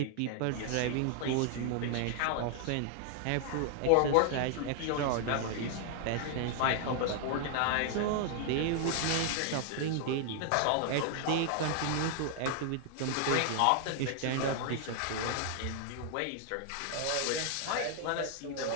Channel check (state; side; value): different; both; correlation 0.00